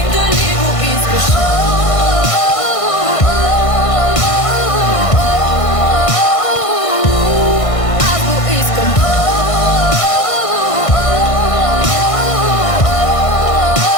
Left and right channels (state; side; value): late; right; 1.5 ms